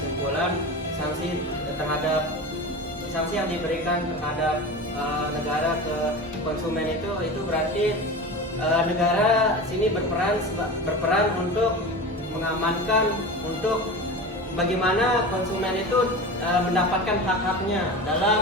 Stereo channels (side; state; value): both; normal; correlation 0.29